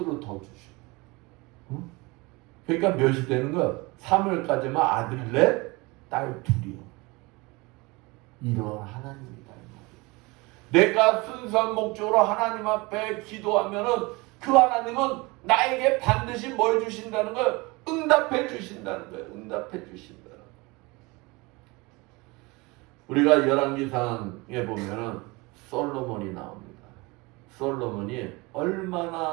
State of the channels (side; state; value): left; quieter; 24.7 dB